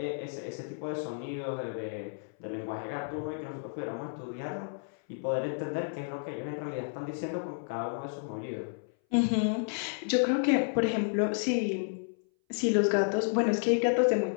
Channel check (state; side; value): silent; right; 57 dB below the other